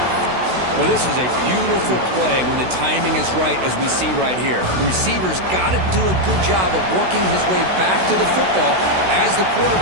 Well, this is a beautiful play when the timing is right, as we see right here. The receiver's got to do a good job of working his way back to the football as the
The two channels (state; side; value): late; left; 16 ms